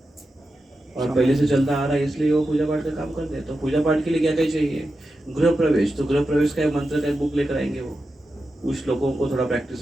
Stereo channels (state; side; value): normal; both; correlation 0.90